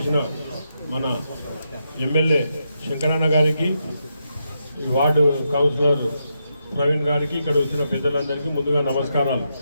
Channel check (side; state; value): both; inverted; correlation -0.83